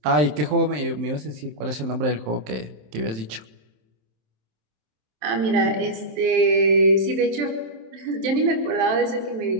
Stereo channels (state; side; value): late; left; 27 ms